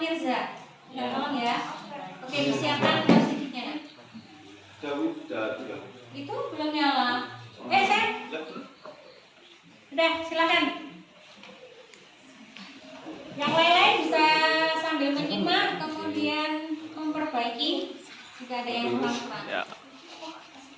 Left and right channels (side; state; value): both; identical; correlation 1.00